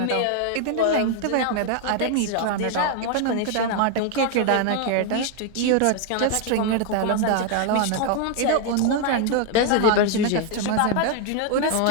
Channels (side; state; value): both; different; correlation 0.00